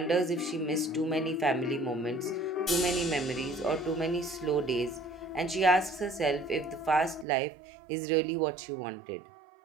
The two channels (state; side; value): drops out; left; at 7.2 s